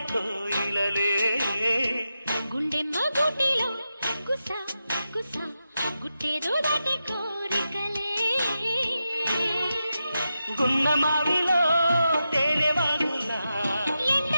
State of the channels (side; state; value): both; inverted; correlation -0.90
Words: కోయిలలే గుండెమ్మ గూటిలో కుస కుస గుట్టేదో దాటే కోరికలే గున్న మావిలో తేనె వాగులా